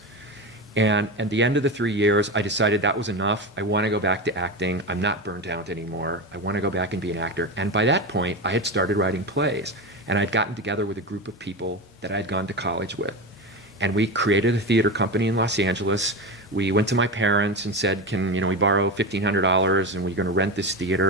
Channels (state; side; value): normal; both; correlation 0.21